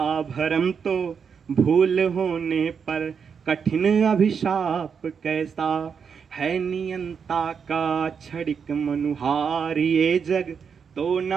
भरम, तो भूल होने पर कठिन अभिशाप कैसा। है नियंता का क्षणिक मनुहार ये जग, तो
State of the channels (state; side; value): quieter; left; 6.5 dB